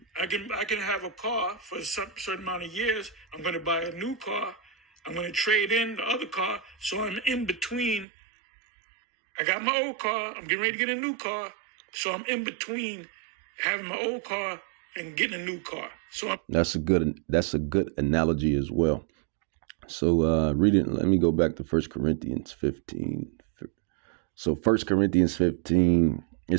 I can have a car for a certain amount of years. I'm going to buy a new car. I'm going to trade in the other car. So I'm in between. I got my old car. I'm getting ready to get a new car. So I'm in between having my old car and getting a new car. So that's a good analogy as well. So reading, let me go back to 1 Corinthians 15. So 1 Corinthians 15, it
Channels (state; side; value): drops out; left; at 8.1 s